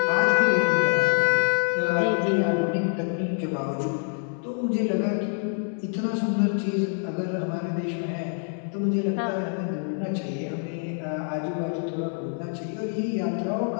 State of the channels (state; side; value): silent; right; 56 dB below the other